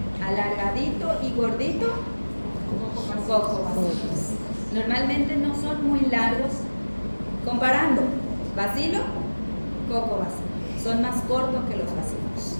alargadito y gordito, cocobacilos. Normalmente no son muy largos. Comparando bacilo, cocobacilo. Son más cortos que los bacilos,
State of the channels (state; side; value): inverted; both; correlation -1.00